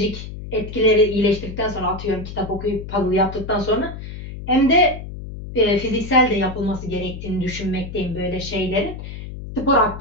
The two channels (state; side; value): noise; left; hum, 10 dB below the sound